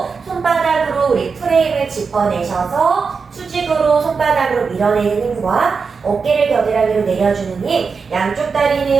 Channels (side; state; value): left; quieter; 5.2 dB